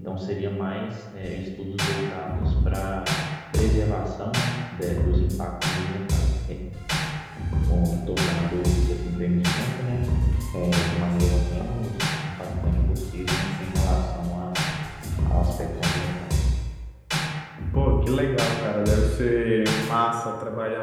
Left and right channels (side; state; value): both; identical; correlation 1.00